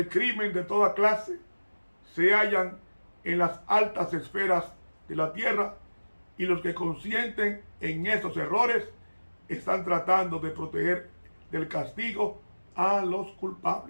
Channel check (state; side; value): inverted; both; correlation -1.00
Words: crimen de toda clase se hallan en las altas esferas de la tierra, y los que consienten en esos errores están tratando de proteger del castigo a los